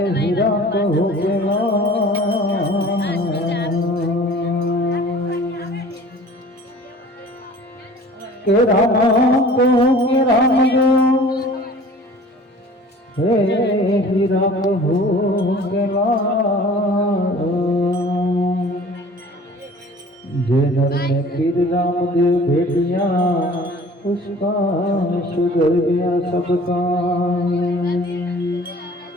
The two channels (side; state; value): both; normal; correlation 0.47